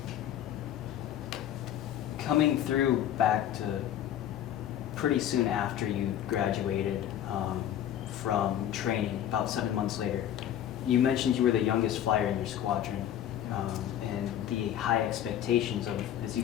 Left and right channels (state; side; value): quieter; right; 10.8 dB